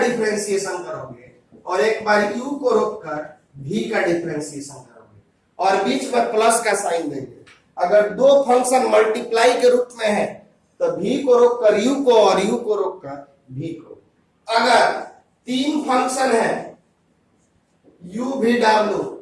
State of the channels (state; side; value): identical; both; correlation 1.00